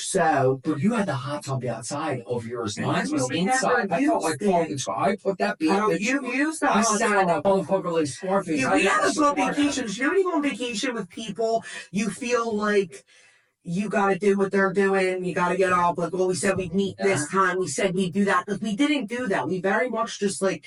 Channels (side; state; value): both; identical; correlation 1.00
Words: But you had the hot tub outside of yours. Mine was we inside. I felt like fucking. I put that. You used that. I sat up on the like Scarface. We had to go on vacations. You know, when you go on vacation with people, you feel like you got to do what they're doing. You got to get up. Like, well, we said we'd meet this time. We said we'd do that. Like, we didn't do that. We very much just like,